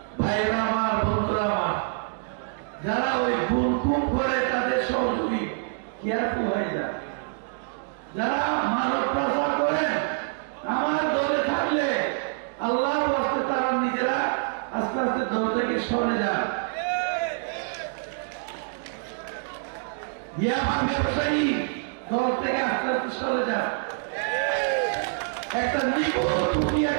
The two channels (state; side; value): silent; left; digital silence